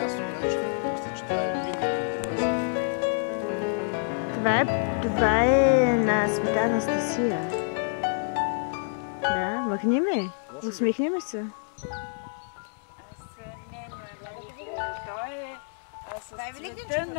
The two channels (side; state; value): right; silent; digital silence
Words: на нещо. Мисля, че това е Това е на Света Анастасия. Да, махни ме. Усмихни ме се.